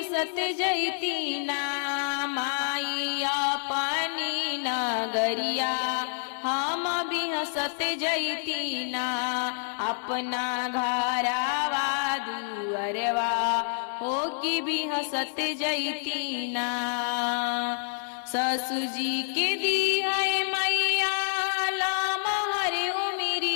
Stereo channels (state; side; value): silent; right; digital silence